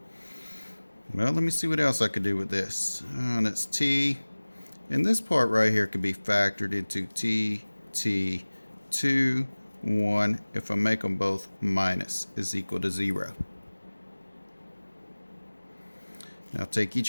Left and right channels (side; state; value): both; inverted; correlation -1.00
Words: Well, let me see what else I could do with this. And it's t. And this part right here could be factored into t, 2, 1. If I make them both minus is equal to 0. Now take